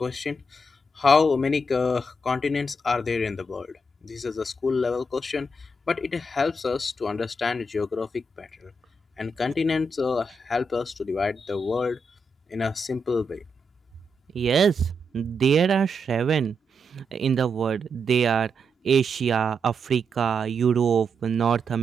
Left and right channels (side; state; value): both; normal; correlation 0.82